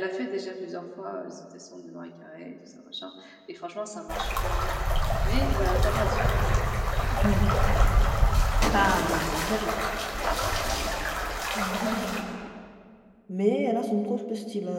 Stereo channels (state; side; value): identical; both; correlation 1.00